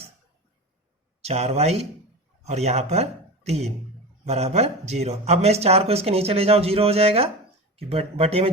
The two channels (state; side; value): normal; both; correlation 0.27